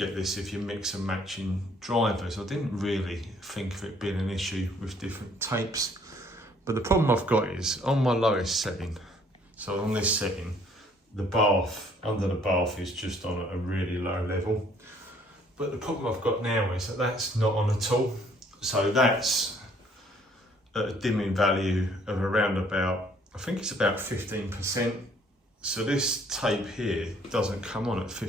this if you mix and matching drivers. I didn't really think of it being an issue with different tapes, but the problem I've got is on my lowest setting, so on this setting, the bath, under the bath is just on a really low level. But the problem I've got now is that that's not on at all. So that's at a dimming value of around about, I think it's about 15%. So this tape here doesn't come on at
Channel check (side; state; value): both; normal; correlation 0.62